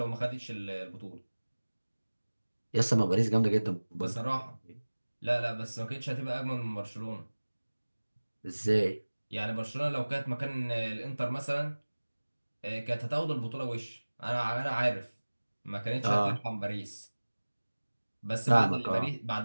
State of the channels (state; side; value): inverted; both; correlation -1.00